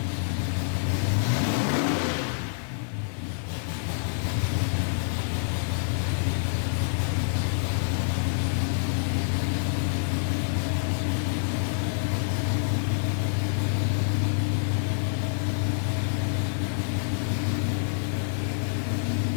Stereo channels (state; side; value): silent; right; 60 dB below the other